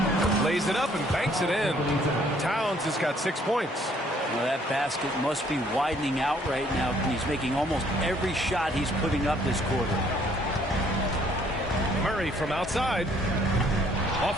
Lays it up and banks it in. Towns has got 6 points. Well, that basket must be widening out right now. He's making almost every shot he's putting up this quarter. Murray from outside.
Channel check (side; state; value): both; normal; correlation 0.63